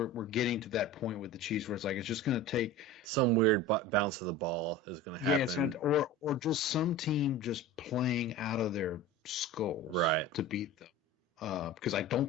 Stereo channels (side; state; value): both; normal; correlation 0.33